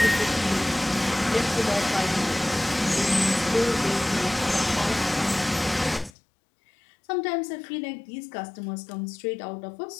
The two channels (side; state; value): right; drops out; at 6.1 s